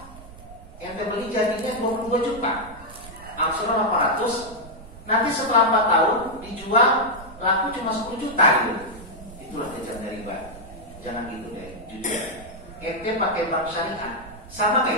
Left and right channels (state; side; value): noise; right; rumble, 17 dB below the sound